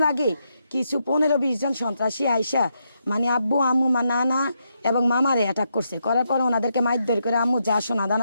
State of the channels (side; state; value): both; inverted; correlation -0.81